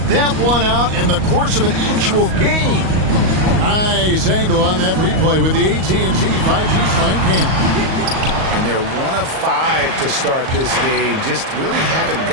that one out in the course of an actual game. Nice angle on that replay with the AT&T 5G Slam Cam. And they're 1 of 5 to start this game. Just really haven't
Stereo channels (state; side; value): late; left; 38 ms